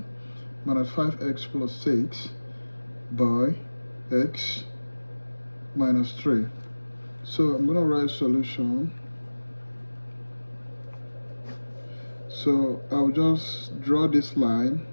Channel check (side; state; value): both; inverted; correlation -1.00